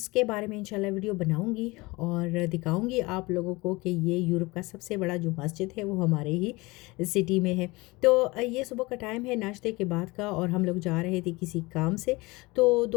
बारे में इंशाल्लाह वीडियो बनाऊंगी और दिखाऊंगी आप लोगों को कि ये यूरोप का सबसे बड़ा जो मस्जिद है वो हमारे ही सिटी में है। तो ये सुबह का टाइम है नाश्ते के बाद का, और हम लोग जा रहे थे किसी काम से। तो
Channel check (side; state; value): right; quieter; 23.3 dB